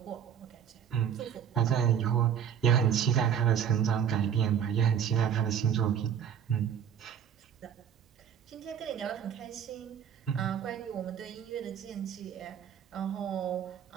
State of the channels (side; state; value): left; quieter; 8.5 dB